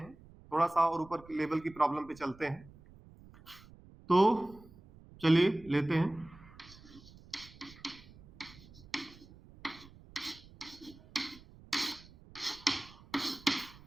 थोड़ा सा और ऊपर लेवल की प्रॉब्लम पे चलते हैं। तो चलिए लेते हैं।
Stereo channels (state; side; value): noise; right; rumble, 22 dB below the sound